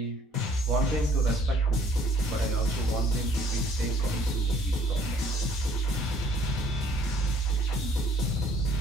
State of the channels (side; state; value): both; normal; correlation 0.60